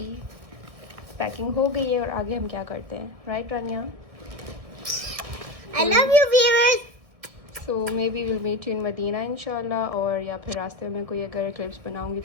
packing हो गई है और आगे हम क्या करते हैं, right Rania? I love you, viewers. So maybe will meet you in Medina इंशाल्लाह, और या फिर रास्ते में कोई अगर क्लिप्स बनाऊंगी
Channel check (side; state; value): left; late; 1.6 ms